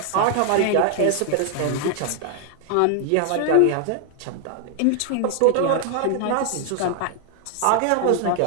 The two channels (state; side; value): different; both; correlation 0.00